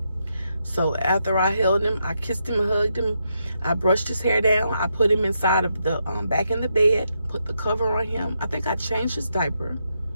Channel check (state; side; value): inverted; both; correlation -0.82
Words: So after I held him, I kissed him and hugged him. I brushed his hair down. I put him inside of the back in the bed, put the cover on him. I think I changed his diaper,